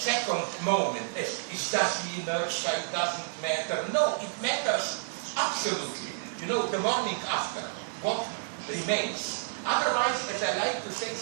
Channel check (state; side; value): silent; left; digital silence